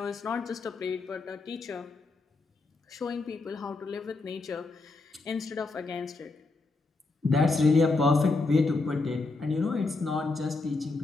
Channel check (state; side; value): quieter; right; 3.6 dB